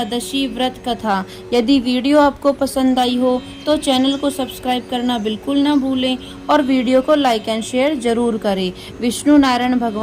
व्रत कथा। यदि वीडियो आपको पसंद आई हो तो चैनल को सब्सक्राइब करना बिल्कुल ना भूलें और वीडियो को लाइक एंड शेयर जरूर करें। विष्णु नारायण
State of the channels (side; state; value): both; identical; correlation 1.00